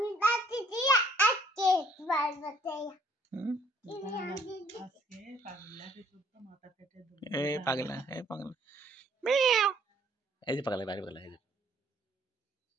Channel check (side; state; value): both; normal; correlation 0.62